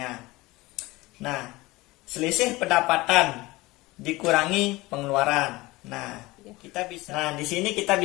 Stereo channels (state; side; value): quieter; right; 20.8 dB